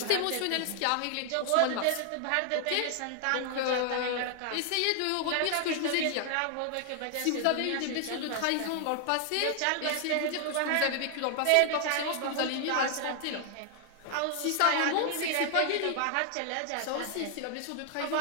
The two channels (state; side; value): different; both; correlation 0.00